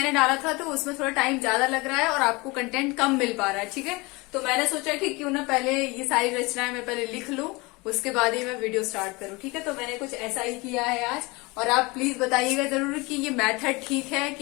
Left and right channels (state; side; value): quieter; right; 24.9 dB